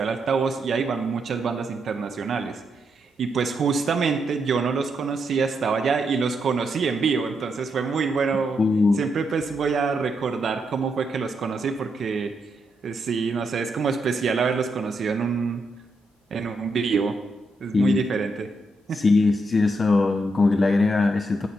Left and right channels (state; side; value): normal; both; correlation 0.81